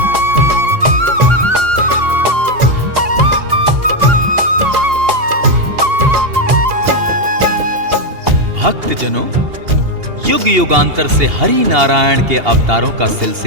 भक्त जनों, युग युगांतर से हरि नारायण के अवतारों का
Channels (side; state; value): left; late; 2.8 ms